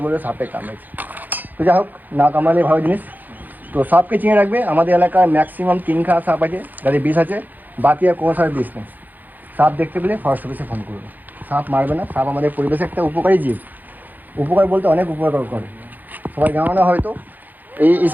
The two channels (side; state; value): left; late; 0.085 ms